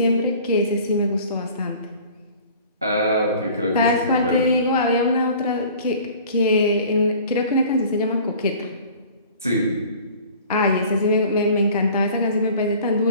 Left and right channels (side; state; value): both; inverted; correlation -0.47